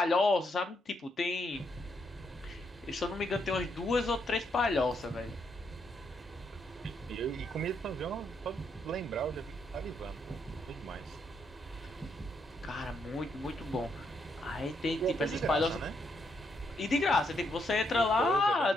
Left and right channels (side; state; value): both; normal; correlation 0.77